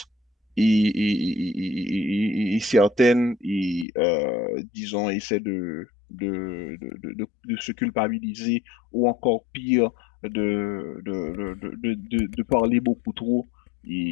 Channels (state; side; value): drops out; right; at 3.9 s